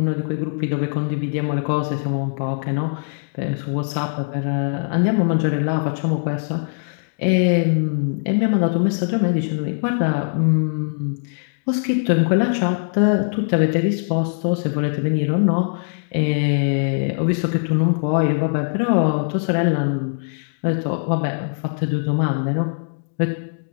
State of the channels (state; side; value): silent; right; digital silence